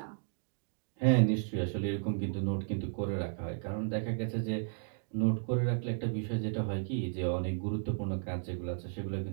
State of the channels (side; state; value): left; silent; digital silence